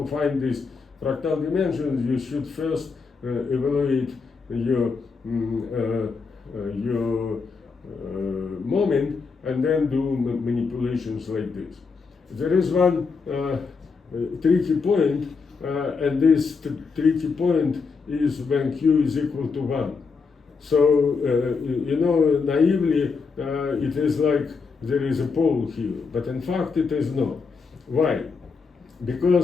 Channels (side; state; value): right; quieter; 4.9 dB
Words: find these fractal dimensions, you should first evaluate your moment, and then do manipulations like this. There is one tricky point, and this tricky point is when q is equal to 1. So, you know, naively, it is like there is a pole here, but in fact it is not. Why?